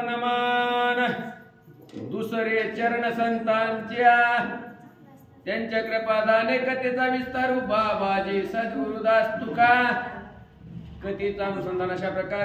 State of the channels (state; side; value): identical; both; correlation 1.00